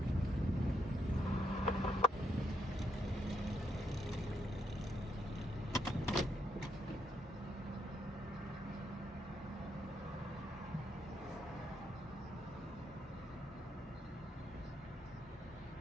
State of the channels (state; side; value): normal; both; correlation 0.77